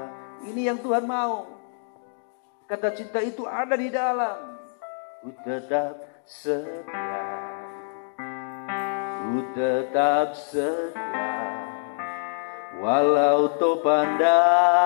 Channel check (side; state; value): right; silent; digital silence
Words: Ini yang Tuhan mau. Kata cinta itu ada di dalam. Ku tetap setia, ku tetap setia, walau topan